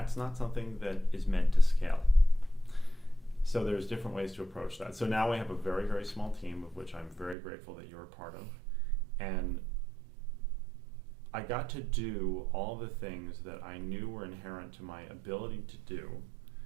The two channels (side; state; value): left; drops out; at 7.4 s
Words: not something that is meant to scale. So there's different ways to approach that. So now we have a very, very small team, of which I'm very grateful that you're a part of. And I got to do all the things that I knew were inherent to my ability to do,